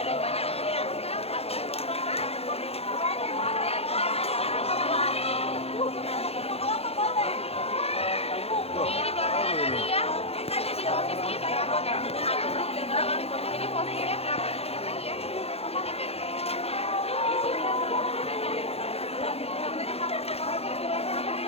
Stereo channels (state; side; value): late; right; 0.29 ms